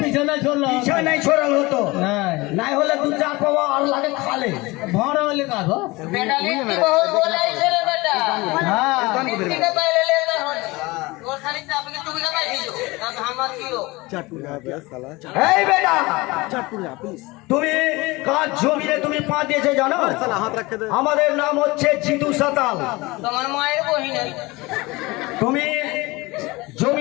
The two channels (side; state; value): right; quieter; 22.5 dB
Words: পিছনে চললো পিছা নাই ছড়ালো হতো, নাই হলে 2-4 পাওয়া আর লাগে খালে ভাড়া হলে কাজ। এই বেটা তুমি কাজ জমিতে তুমি পা দিয়েছে জানো? আমাদের নাম হচ্ছে জিতু সাতাল। তোমার মায়ের বহিনে তুমি